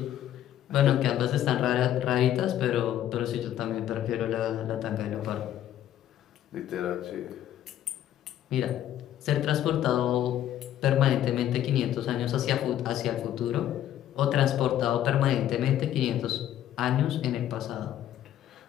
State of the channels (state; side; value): quieter; right; 11.7 dB